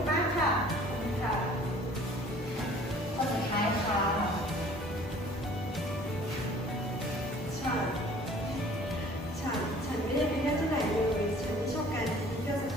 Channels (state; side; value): normal; both; correlation 0.51